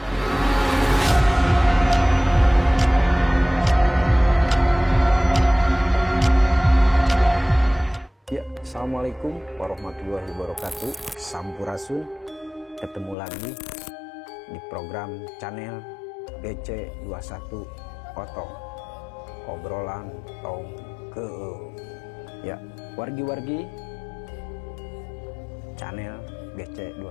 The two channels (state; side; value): drops out; right; at 13.2 s